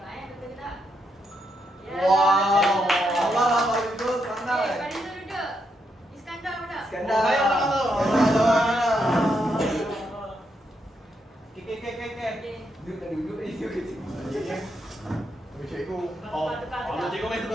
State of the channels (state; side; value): normal; both; correlation 0.80